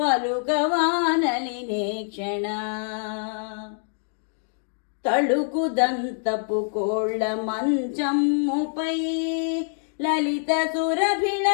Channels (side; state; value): right; silent; digital silence